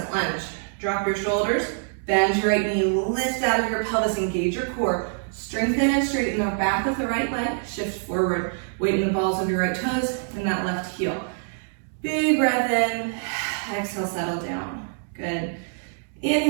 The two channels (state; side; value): silent; left; 60 dB below the other